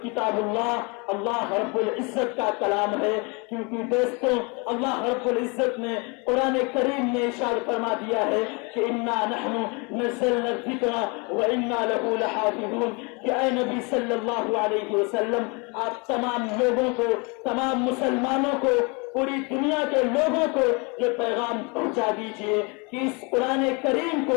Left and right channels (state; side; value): quieter; right; 30.8 dB